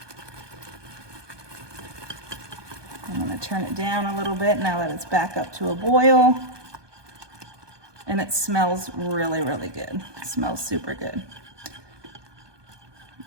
I'm gonna turn it down a little bit now that it's back up to a boil. And it smells really, really good. It smells super good.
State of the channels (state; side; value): late; left; 1.2 ms